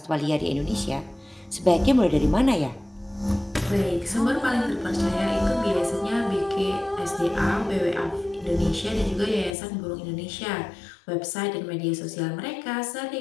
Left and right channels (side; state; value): right; drops out; at 9.6 s